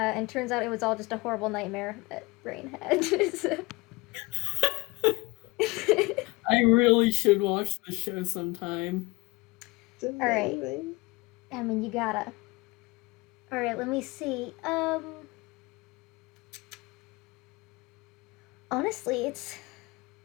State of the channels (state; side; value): quieter; right; 23.5 dB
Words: turns out it was all just a horrible nightmare that Brain had. I really should watch the show sometime. Alright. I mean, you gotta. Alright, let me see. Honestly,